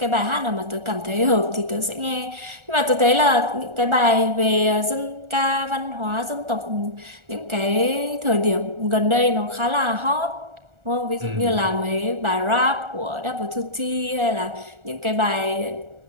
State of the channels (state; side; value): late; left; 1.4 ms